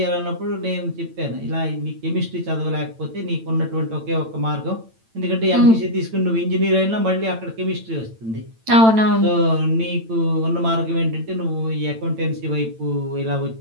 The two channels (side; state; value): left; late; 8.9 ms